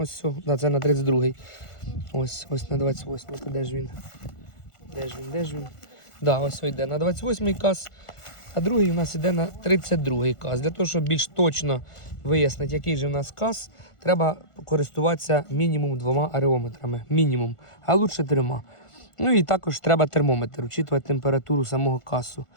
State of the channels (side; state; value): right; late; 1.5 ms